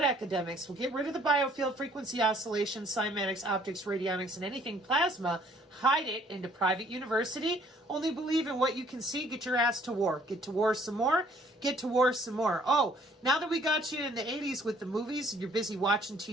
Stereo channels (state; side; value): normal; both; correlation 0.60